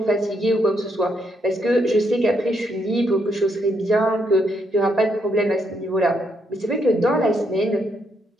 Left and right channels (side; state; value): both; normal; correlation 0.76